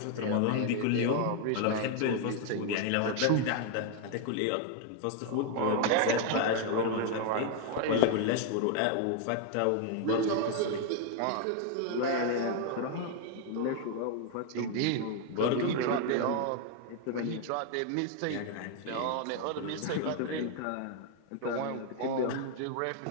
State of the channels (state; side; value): different; both; correlation 0.00